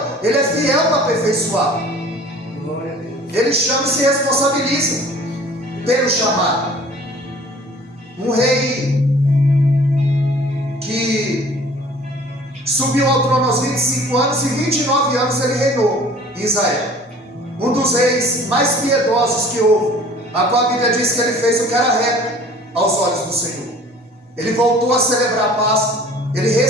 Ele é fiel para aperfeiçoar. Ele chama e se responsabiliza pelo chamado. Um rei que subiu ao trono aos 25 anos e 29 anos ele reinou em Israel. Um dos reis mais piedosos que houve, a qual a Bíblia diz que ele fez o que era reto aos olhos do Senhor. Ele voltou a celebrar a Páscoa, ele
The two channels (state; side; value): normal; both; correlation 0.49